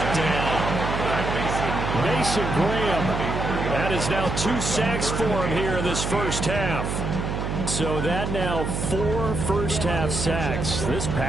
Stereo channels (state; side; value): noise; right; hum, 2 dB below the sound